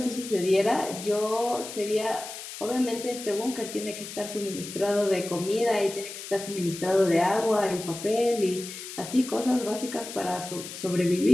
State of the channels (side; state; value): left; noise; hiss, 10 dB below the sound